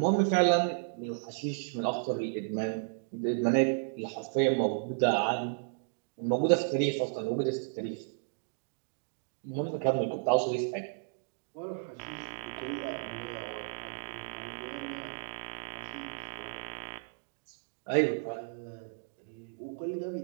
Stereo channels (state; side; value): silent; left; digital silence